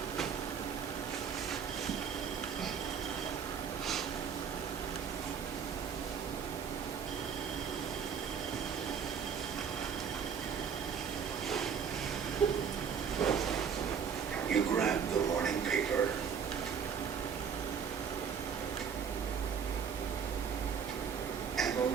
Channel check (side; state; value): left; quieter; 7.0 dB